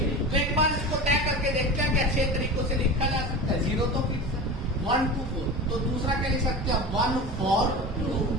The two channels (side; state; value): both; normal; correlation 0.30